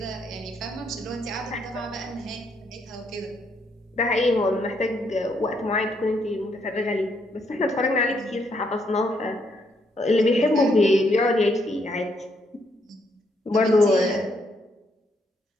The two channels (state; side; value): normal; both; correlation 0.74